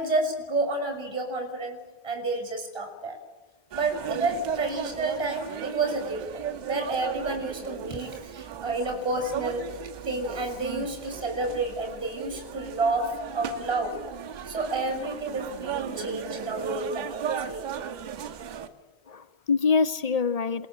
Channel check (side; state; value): right; late; 1.8 ms